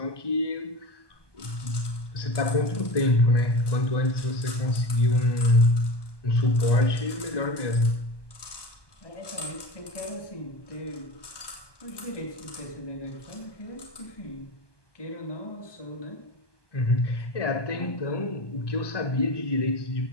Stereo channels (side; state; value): right; late; 1.2 ms